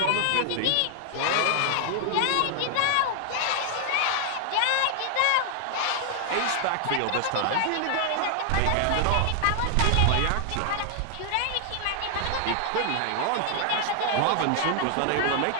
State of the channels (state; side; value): different; both; correlation 0.00